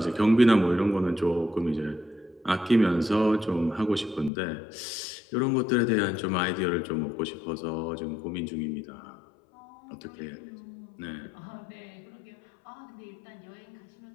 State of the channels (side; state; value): right; drops out; at 4.3 s